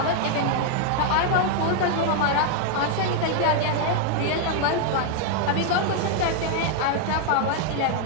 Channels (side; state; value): both; different; correlation 0.00